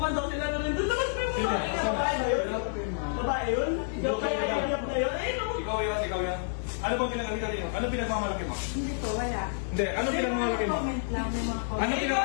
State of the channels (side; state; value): right; silent; digital silence